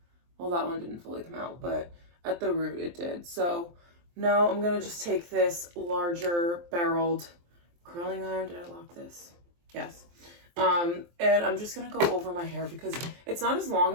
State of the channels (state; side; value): late; left; 23 ms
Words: well, that one didn't fully come out, but at the root it did. So now I'm gonna just take this larger barreled curling iron. Did I lock this? Yes. And I'm just gonna go over my hair because it's not as long